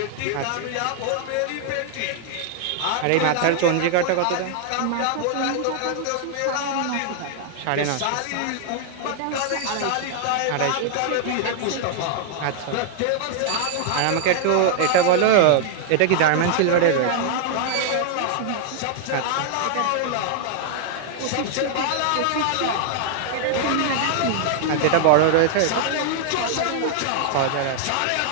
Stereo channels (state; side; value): different; both; correlation -0.01